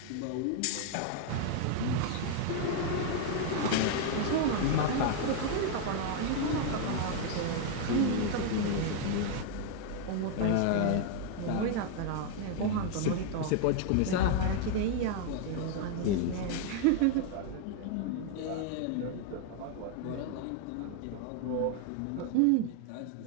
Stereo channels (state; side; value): different; both; correlation 0.00